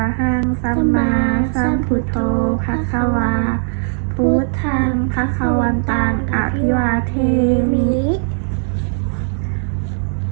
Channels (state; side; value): silent; left; 60 dB below the other